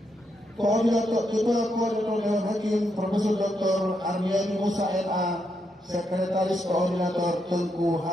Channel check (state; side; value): normal; both; correlation 0.81